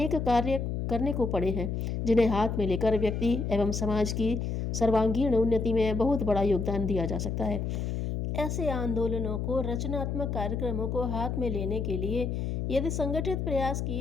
कार्य करने को पड़े हैं जिन्हें हाथ में लेकर व्यक्ति एवं समाज की सर्वांगीण उन्नति में बहुत बड़ा योगदान दिया जा सकता है। ऐसे आंदोलनों को, रचनात्मक कार्यक्रमों को हाथ में लेने के लिए यदि संगठित प्रयास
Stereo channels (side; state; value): left; noise; hum, 2 dB below the sound